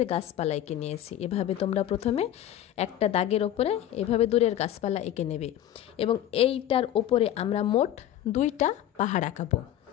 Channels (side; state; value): right; quieter; 11.9 dB